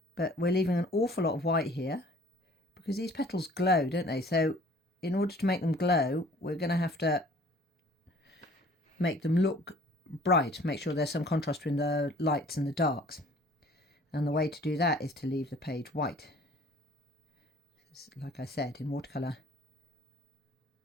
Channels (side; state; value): both; normal; correlation 0.53